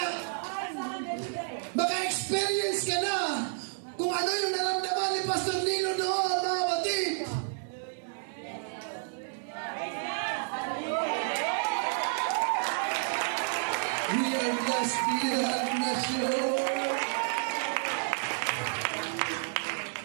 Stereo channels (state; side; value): silent; left; digital silence